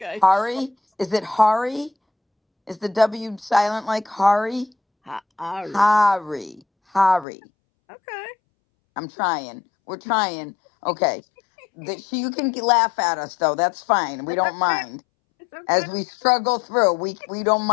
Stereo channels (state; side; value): drops out; right; at 7.2 s